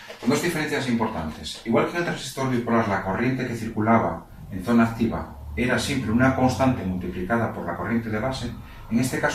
con dos diferencias importantes. Igual que en el transistor bipolar la corriente que circulaba en zona activa era siempre una constante multiplicada por la corriente de base, en este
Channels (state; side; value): identical; both; correlation 1.00